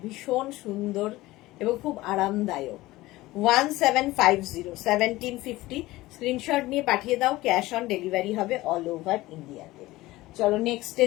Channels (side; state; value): right; quieter; 18.3 dB